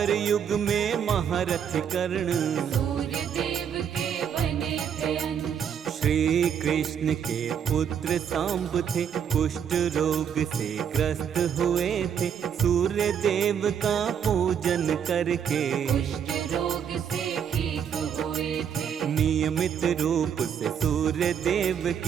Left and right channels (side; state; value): left; quieter; 8.1 dB